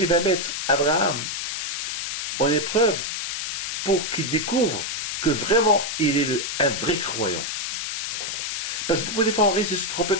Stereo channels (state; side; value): noise; left; hiss, 3 dB below the sound